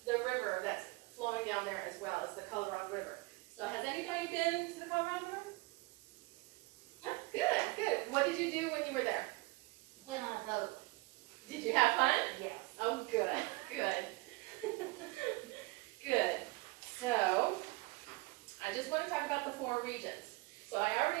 the river that's flowing down there as well as the Colorado River. So has anybody been to the Colorado River? No? Good, good. What did you do when you were there? Went on a boat. Did you have fun? Yes. Oh, good, good. Good. So, I just want to talk about the 4 regions. So I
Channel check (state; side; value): quieter; left; 24.8 dB